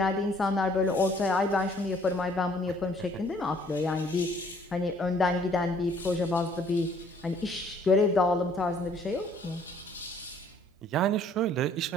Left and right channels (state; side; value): normal; both; correlation 0.60